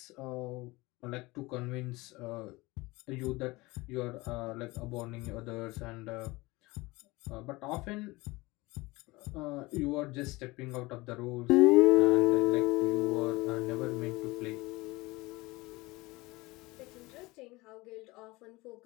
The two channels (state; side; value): quieter; right; 22.1 dB